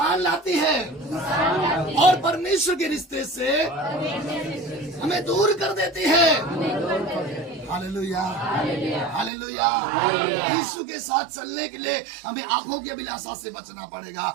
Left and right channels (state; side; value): drops out; left; at 9.3 s